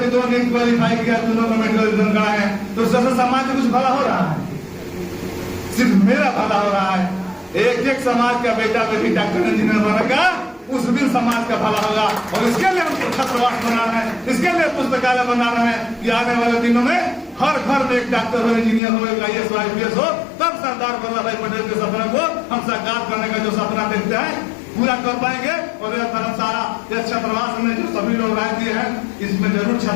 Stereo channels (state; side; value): drops out; right; at 18.8 s